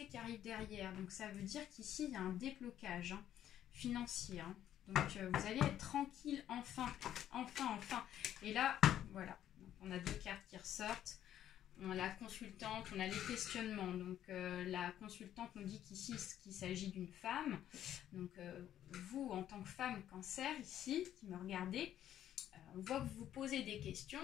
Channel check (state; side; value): quieter; right; 11.3 dB